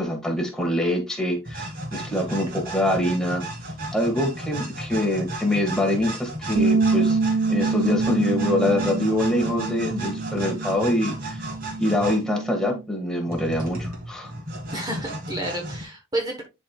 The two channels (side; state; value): both; normal; correlation 0.57